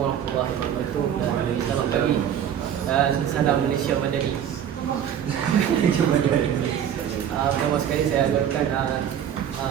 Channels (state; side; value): quieter; left; 9.4 dB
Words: warahmatullahi wabarakatuh. Selamat pagi. Salam Malaysia Madani. Pertama sekali saya agarkan